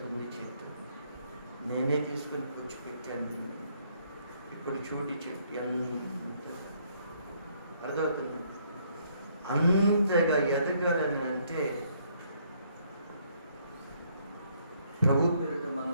ఉంది చెట్టు, నేనే తీసుకుని కూర్చోపెట్టాను. ఇప్పుడు చూడి చెట్టు ఎంత అర్థమవుతుంది. అంతగా ఎదగాలని అంటే ప్రభు పేరిట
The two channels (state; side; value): inverted; both; correlation -0.68